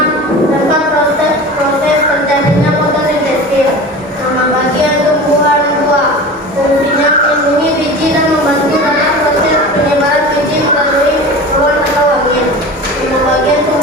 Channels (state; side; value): normal; both; correlation 0.34